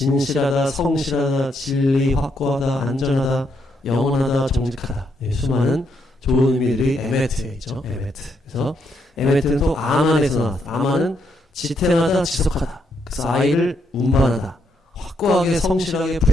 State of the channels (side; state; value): both; normal; correlation 0.77